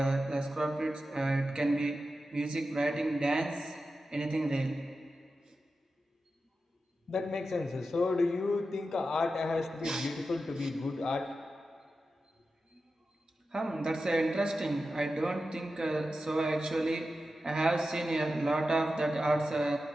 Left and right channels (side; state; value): both; normal; correlation 0.91